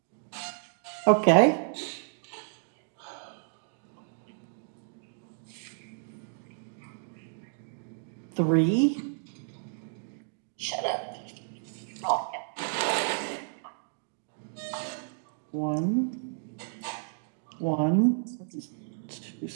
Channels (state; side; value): silent; left; digital silence